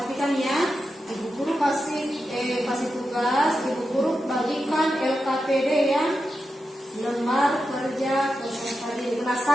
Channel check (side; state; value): both; normal; correlation 0.89